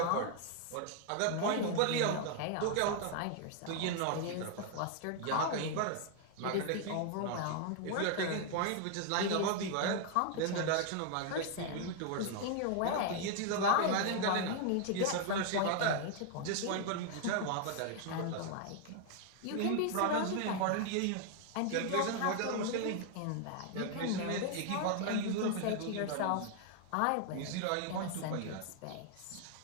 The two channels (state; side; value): different; both; correlation 0.00